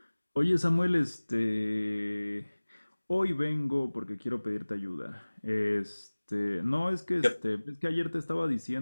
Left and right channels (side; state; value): both; inverted; correlation -1.00